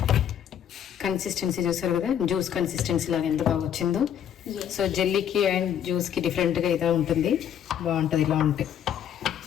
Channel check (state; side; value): quieter; right; 9.5 dB